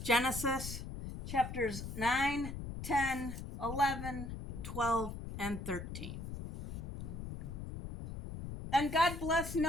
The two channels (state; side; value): noise; left; rumble, 7 dB below the sound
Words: Genesis chapters 9, 10, 11, 12, and 13. And God blessed